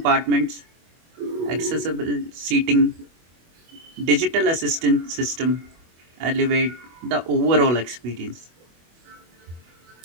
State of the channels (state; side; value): late; left; 24 ms